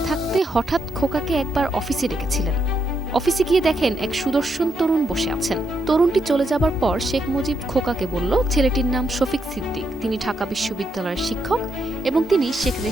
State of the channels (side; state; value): both; normal; correlation 0.79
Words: থাকতে হঠাৎ খোকাকে একবার অফিসে ডেকেছিলেন। অফিসে গিয়ে দেখেন এক সুদর্শন তরুণ বসে আছেন। তরুণটি চলে যাবার পর শেখ মুজিব খোকাকে বলল, ছেলেটির নাম শফিক সিদ্দিক, তিনি ঢাকা বিশ্ববিদ্যালয়ের শিক্ষক এবং তিনি শেখ